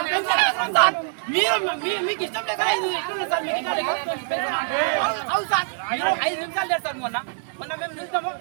మీకు ఇష్టం లేక సార్ సార్ 5 నిమిషాలు లేదు సార్ మొన్న మేము చూస్తాము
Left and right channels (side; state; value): left; silent; 63 dB below the other